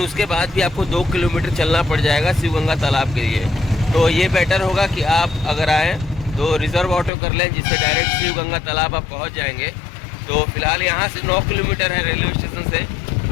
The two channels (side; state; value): right; drops out; at 7.1 s